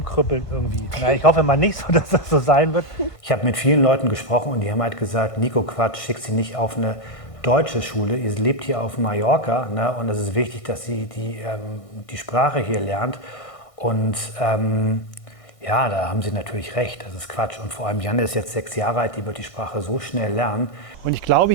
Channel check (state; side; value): late; right; 1.6 ms